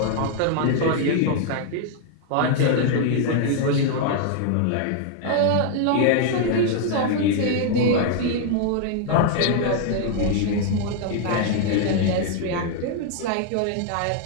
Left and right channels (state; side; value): different; both; correlation 0.00